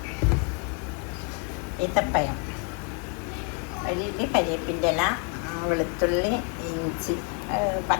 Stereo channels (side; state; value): right; quieter; 38.0 dB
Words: ഈത്തപ്പഴം, വലിയ കരിയേപ്പിൻ്റെ ഇല, വെളുത്തുള്ളി, ഇഞ്ചി,